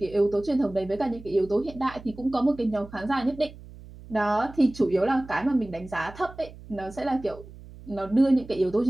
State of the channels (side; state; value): right; noise; hum, 18 dB below the sound